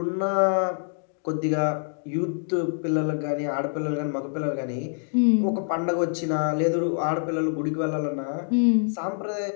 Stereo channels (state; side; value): silent; right; digital silence